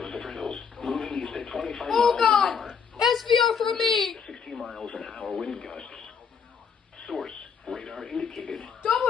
Zephyr Hills, moving east at 25 Oh miles god! an hour. SBR for me! 60 miles an hour wind gusts. Source, radar indicated.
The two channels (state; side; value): quieter; right; 6.4 dB